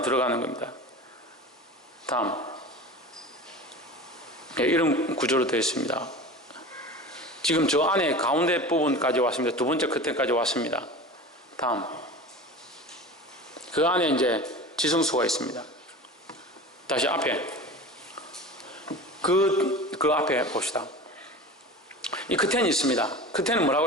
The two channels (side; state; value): both; normal; correlation 0.34